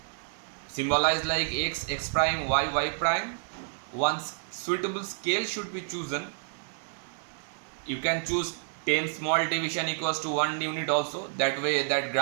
symbolized like x prime, y prime. One suitable scale should be chosen. You can choose 10 small division equals to 1 unit also. That way that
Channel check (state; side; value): silent; left; 58 dB below the other